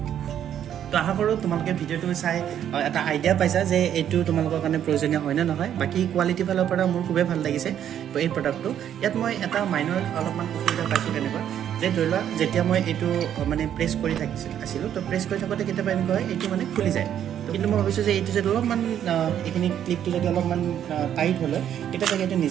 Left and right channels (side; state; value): left; quieter; 10.0 dB